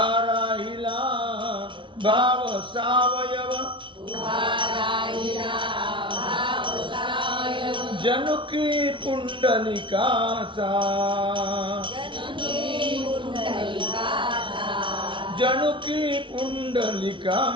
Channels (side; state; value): left; late; 0.24 ms